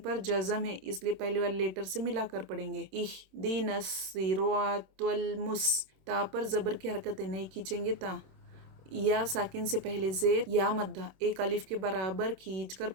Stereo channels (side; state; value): left; late; 26 ms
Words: جزم ہے اس لیے پہلے والے لیٹر سے ملا کر پڑھیں گے. اح دین الصراط المس. تا پر زبر کی حرکت ہے، نہیں کھینچیں گے تا. या साकिन से पहले ज़ेर या मद्दा एक अलिफ के बराबर खींच कर